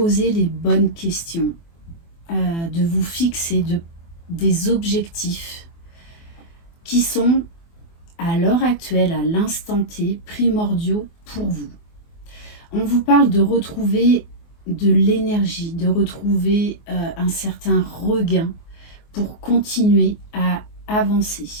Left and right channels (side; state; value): right; late; 24 ms